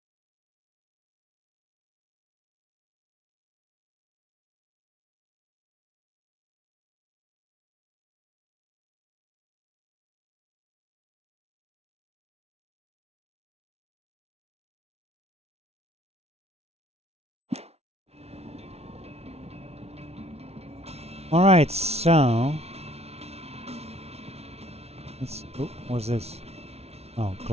Alright, so... oh, what's this? Oh,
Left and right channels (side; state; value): left; late; 0.31 ms